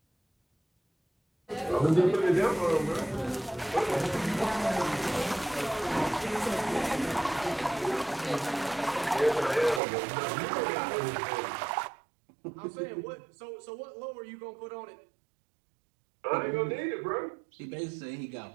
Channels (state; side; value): drops out; left; at 9.8 s